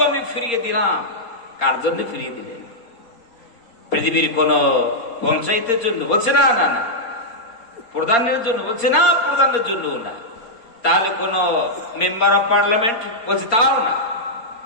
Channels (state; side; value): late; right; 4.3 ms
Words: আমি ফিরিয়ে দিলাম। কার জন্য ফিরিয়ে দিলেন? পৃথিবীর কোন পঞ্চায়েতের জন্য বলছে না, না না। প্রধানের জন্য বলছে না, প্রধানের জন্য না। তাহলে কোন মেম্বার অফ পার্লামেন্ট বলছে তাও না।